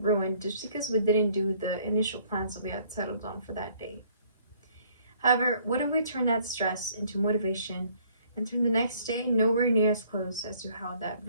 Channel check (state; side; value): inverted; both; correlation -0.61